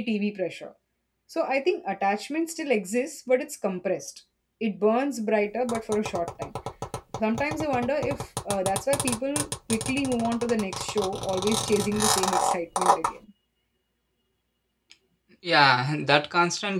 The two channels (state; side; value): identical; both; correlation 1.00